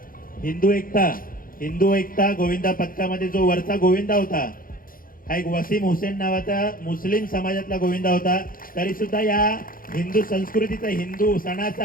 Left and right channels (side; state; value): right; late; 0.41 ms